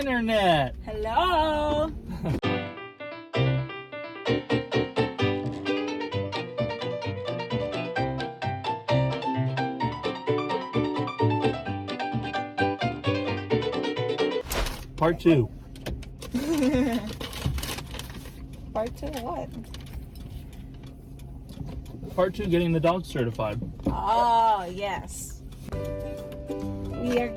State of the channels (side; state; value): both; identical; correlation 1.00